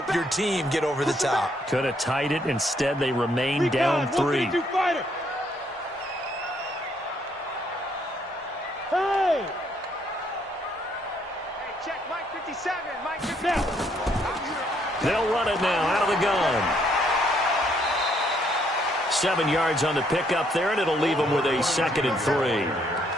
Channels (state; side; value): normal; both; correlation 0.70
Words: your team get over the top. Could have tied it. Instead, they remain down 3. Hey, check Mike 57. Mike 57. They'll run it now out of the gun. 7 yards on the pickup there, and it'll leave them with a 2nd and 3.